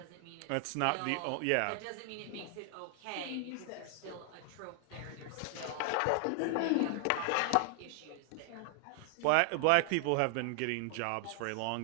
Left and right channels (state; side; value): different; both; correlation 0.00